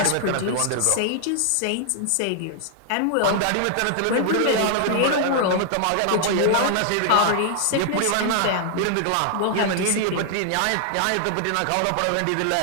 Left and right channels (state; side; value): different; both; correlation 0.00